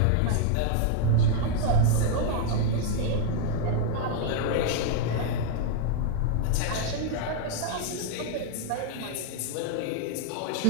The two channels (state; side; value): different; both; correlation -0.01